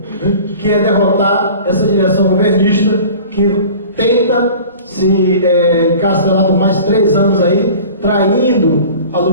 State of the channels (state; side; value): inverted; both; correlation -0.42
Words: né, que é derrotar essa direção governista que tenta se encastelar por mais 3 anos aí, traindo a